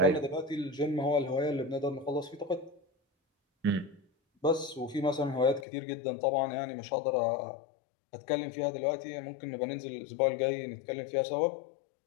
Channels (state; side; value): drops out; right; at 5.7 s